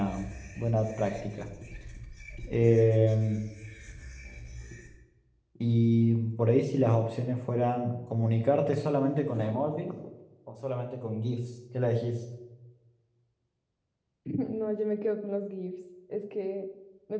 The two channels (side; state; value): both; identical; correlation 1.00